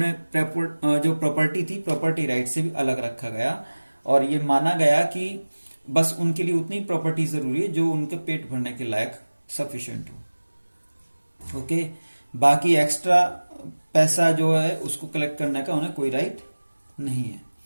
जो प्रॉपर्टी थी, प्रॉपर्टी राइट से भी अलग रखा गया, और ये माना गया कि बस उनके लिए उतनी प्रॉपर्टी जरूरी है जो उनके पेट भरने के लायक सफिशिएंट हो। ओके, बाकी एक्स्ट्रा पैसा जो है उसको कलेक्ट करने का उन्हें कोई राइट नहीं है।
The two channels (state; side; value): inverted; both; correlation -1.00